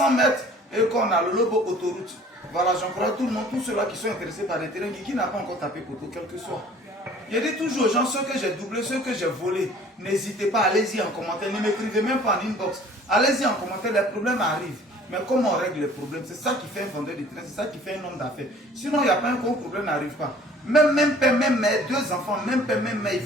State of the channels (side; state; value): both; normal; correlation 0.51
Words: mètres et qu'on a le Lobo Autoroute. Voilà, j'encourage tout le monde, tous ceux-là qui sont intéressés par les terrains, qui n'a pas encore tapé poteau, quel que soit. Je dis toujours aux gens, ceux que j'ai doublés, ceux que j'ai volés, n'hésitez pas, allez-y en commentaire, ne m'écrivez même pas en inbox. Allez-y en commentaire, les problèmes arrivent. Mais comment on règle les problèmes? C'est ça qui fait un vendeur de terrain, c'est ça qui fait un homme d'affaires. Sinon, il n'y a pas un gros problème, n'arrive pas. Même père, même mère, 2 enfants, même père, même mère, ils